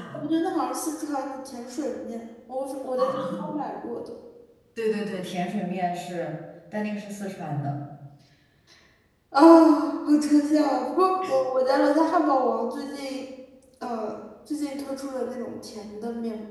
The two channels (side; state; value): both; identical; correlation 1.00